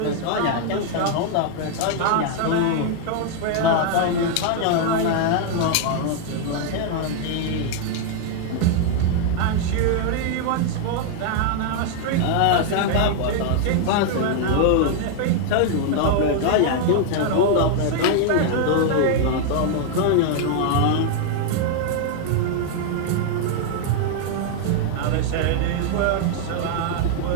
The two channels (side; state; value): both; different; correlation 0.00